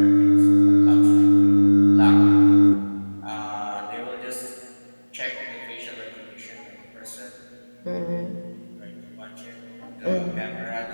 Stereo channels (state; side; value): inverted; both; correlation -1.00